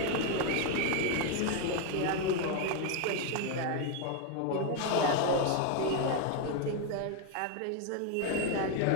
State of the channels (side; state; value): both; different; correlation 0.01